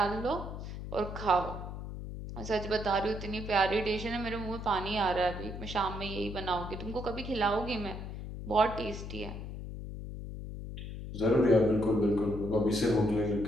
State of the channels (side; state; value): left; noise; hum, 8 dB below the sound